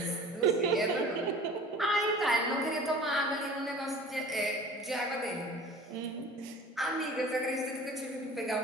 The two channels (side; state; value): both; normal; correlation 0.42